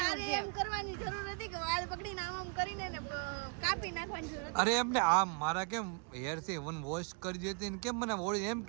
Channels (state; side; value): quieter; left; 37.3 dB